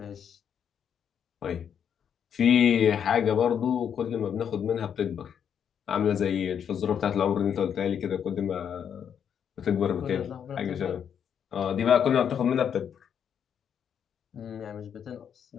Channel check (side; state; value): right; quieter; 8.2 dB